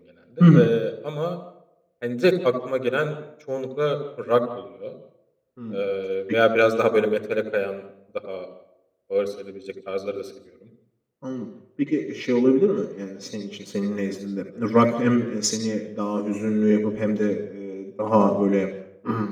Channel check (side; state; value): both; identical; correlation 1.00